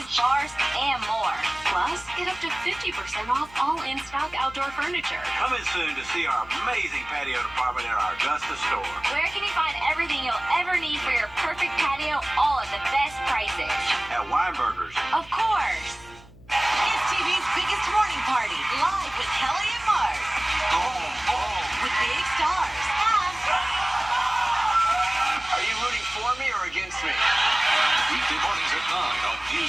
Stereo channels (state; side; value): noise; left; hum, 22 dB below the sound